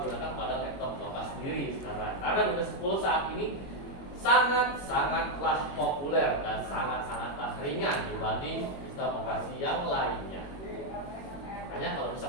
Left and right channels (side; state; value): right; late; 21 ms